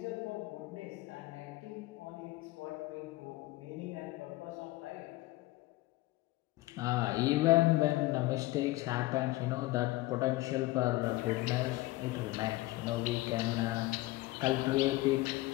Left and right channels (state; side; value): quieter; right; 18.7 dB